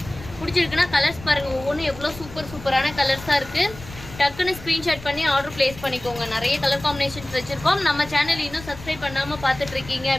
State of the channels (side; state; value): left; noise; rumble, 16 dB below the sound